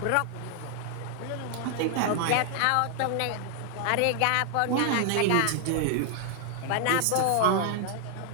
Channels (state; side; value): different; both; correlation 0.00